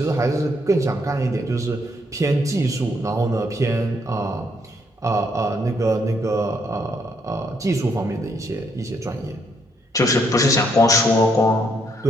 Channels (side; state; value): both; normal; correlation 0.73